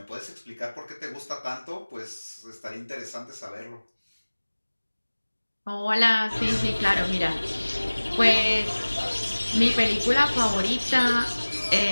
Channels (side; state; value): both; inverted; correlation -1.00